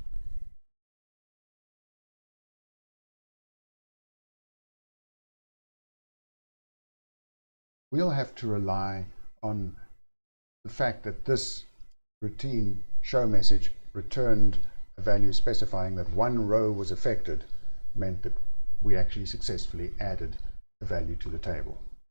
We'll have to rely on the fact that this routine show message returned a value specifying that one row was affected, meant that we actually successfully added a value to the table.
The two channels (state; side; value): inverted; both; correlation -1.00